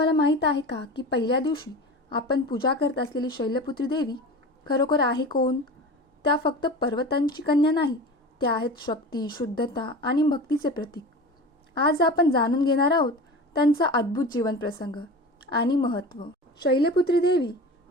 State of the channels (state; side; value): normal; both; correlation 0.33